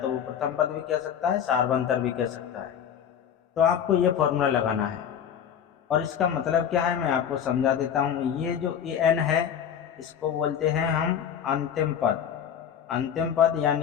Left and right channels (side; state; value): right; quieter; 8.6 dB